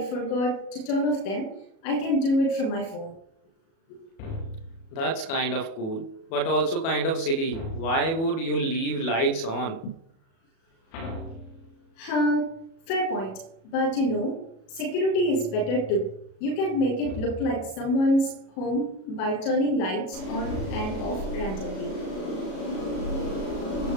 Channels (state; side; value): late; right; 37 ms